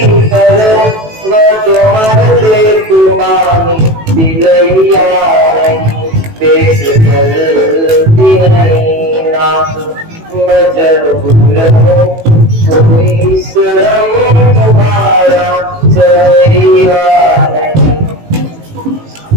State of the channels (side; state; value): left; late; 18 ms